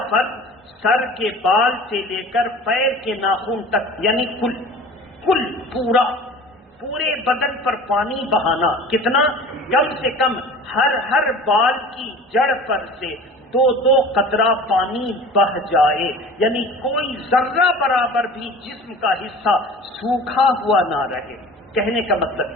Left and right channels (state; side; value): normal; both; correlation 0.40